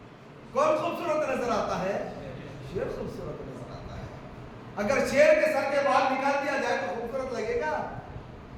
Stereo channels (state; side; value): identical; both; correlation 1.00